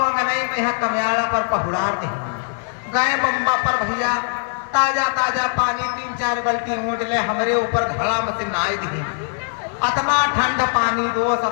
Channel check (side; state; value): right; silent; 58 dB below the other